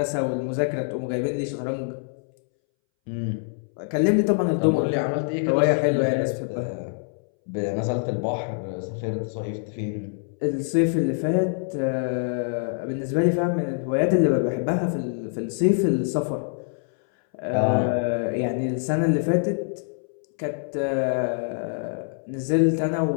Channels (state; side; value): silent; right; 62 dB below the other